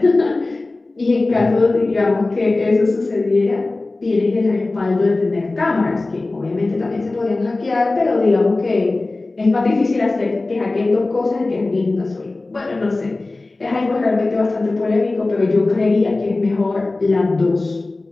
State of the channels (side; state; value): right; quieter; 3.2 dB